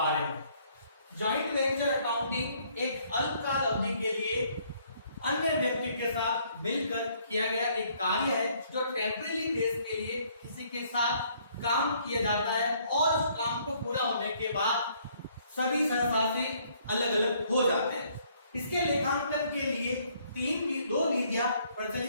में। जॉइंट वेंचर अकाउंटिंग एक अल्पकाल अवधि के लिए अन्य व्यक्ति के साथ मिलकर किया गया एक कार्य है जो टेम्परेरी बेस के लिए किसी के साथ काम किया जाता है और उस काम को पूरा होने के बाद सभी सहसासी अलग अलग हो जाते हैं। इसके लेखांकन के लिए दो विधियां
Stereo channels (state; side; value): inverted; both; correlation -0.65